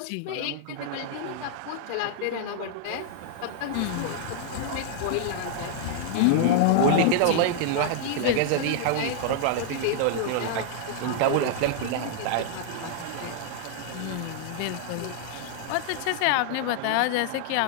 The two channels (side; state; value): both; different; correlation -0.01